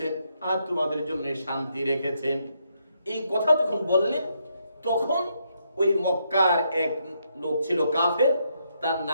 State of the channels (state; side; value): inverted; both; correlation -0.78